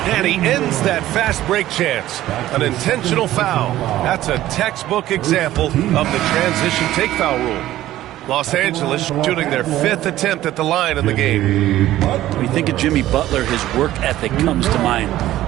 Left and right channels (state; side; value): quieter; left; 14.4 dB